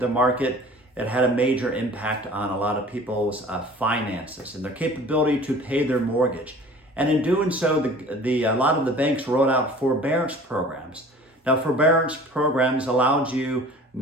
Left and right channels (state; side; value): normal; both; correlation 0.46